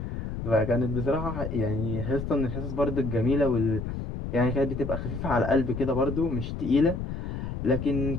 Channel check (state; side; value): noise; left; rumble, 6 dB below the sound